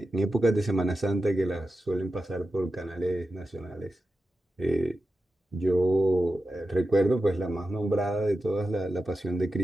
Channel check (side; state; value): both; normal; correlation 0.91